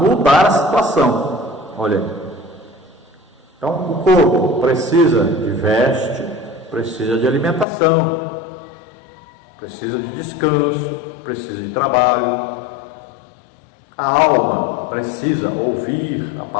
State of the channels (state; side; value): drops out; right; at 7.7 s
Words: a situação. Olha aí. Então, o corpo precisa de veste, precisa de alimentação, precisa de descanso, precisa de trabalho. A alma precisa ouvir a